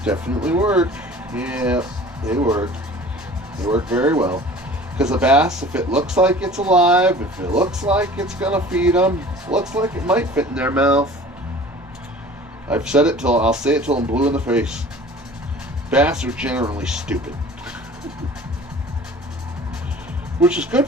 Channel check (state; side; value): normal; both; correlation 0.44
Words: Definitely work. Yeah, they work. They work very well. Because a bass, if it looks like it's alive, if it looks like it's gonna feed them, looks like it might fit in their mouth. I've said it till I'll say it till I'm blue in the face. Bass are generally stupid, which is